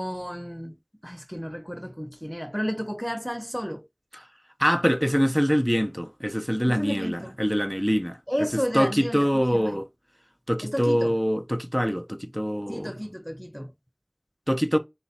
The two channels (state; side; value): identical; both; correlation 1.00